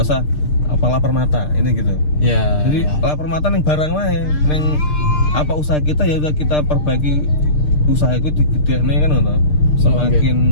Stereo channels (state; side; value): late; right; 6.6 ms